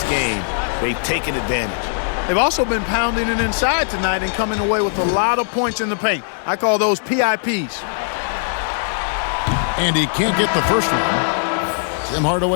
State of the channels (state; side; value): silent; right; digital silence